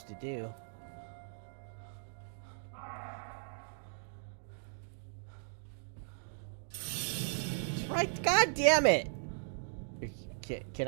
to do. That's right, god damn it! Can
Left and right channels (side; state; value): left; silent; digital silence